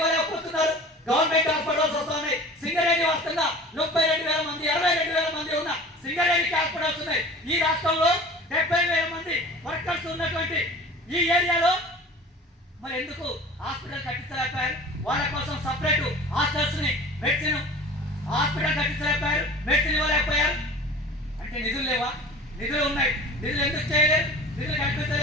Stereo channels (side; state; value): both; normal; correlation 0.40